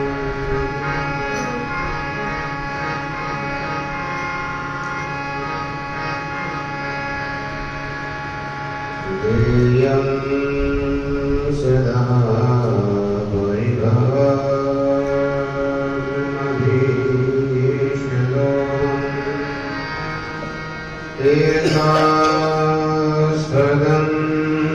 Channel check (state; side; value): identical; both; correlation 1.00